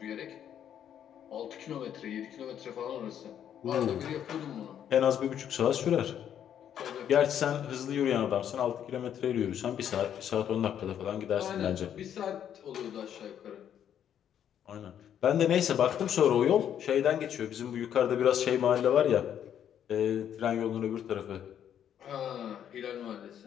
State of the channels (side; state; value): right; quieter; 9.6 dB